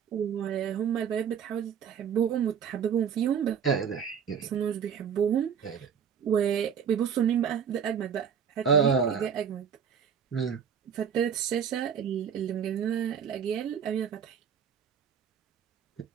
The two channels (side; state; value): left; quieter; 7.5 dB